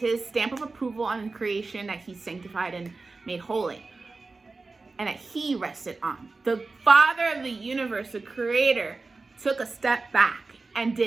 his stamp of approval on creation that he sanctified and made holy, and that he rested on. The Father of the universe, the creator, took a step back and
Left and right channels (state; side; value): quieter; left; 3.8 dB